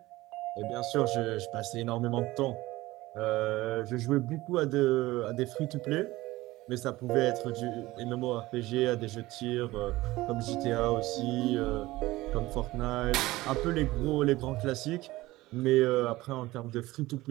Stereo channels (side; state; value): left; quieter; 18.5 dB